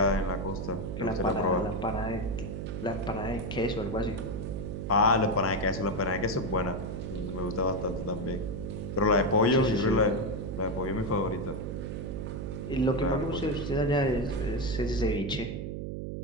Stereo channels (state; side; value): noise; right; hum, 5 dB below the sound